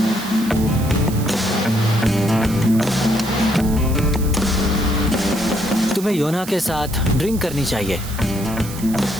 तुम्हें योना के साथ ड्रिंक करनी चाहिए।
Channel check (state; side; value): noise; right; hiss, 13 dB below the sound